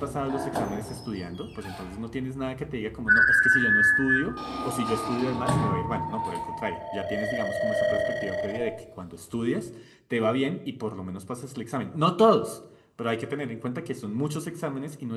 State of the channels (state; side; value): identical; both; correlation 1.00